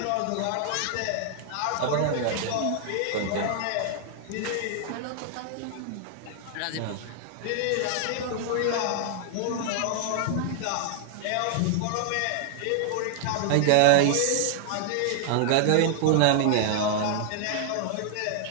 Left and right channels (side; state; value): both; different; correlation -0.01